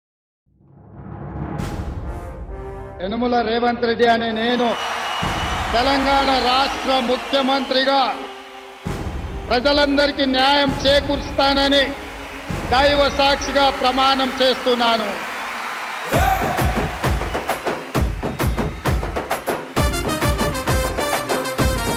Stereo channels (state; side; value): identical; both; correlation 1.00